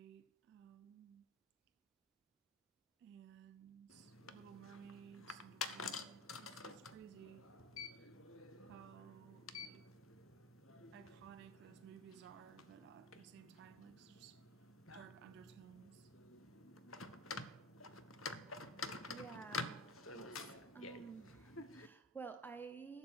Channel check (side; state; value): both; normal; correlation 0.33